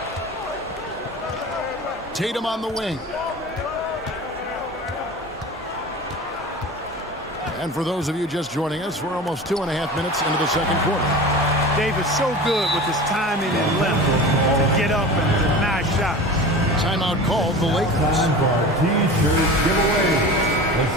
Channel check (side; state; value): both; normal; correlation 0.34